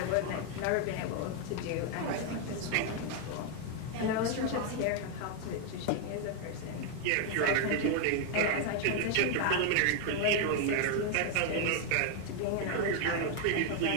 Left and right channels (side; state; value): both; different; correlation 0.01